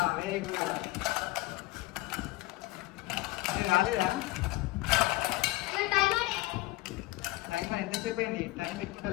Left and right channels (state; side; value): quieter; right; 19.7 dB